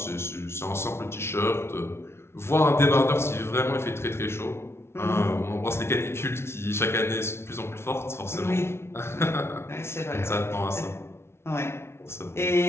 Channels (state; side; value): late; right; 0.12 ms